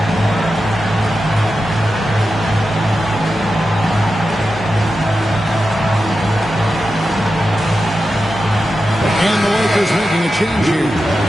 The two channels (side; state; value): both; normal; correlation 0.91